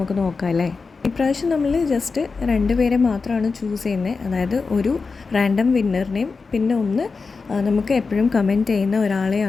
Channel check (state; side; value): quieter; right; 4.5 dB